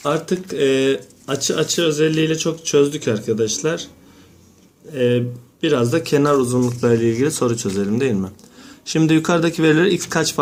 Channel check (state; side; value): identical; both; correlation 1.00